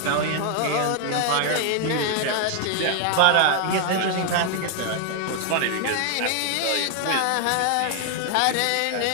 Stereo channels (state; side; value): different; both; correlation 0.00